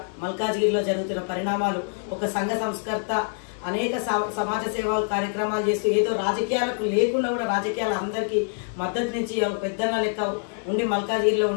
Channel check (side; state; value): right; silent; 59 dB below the other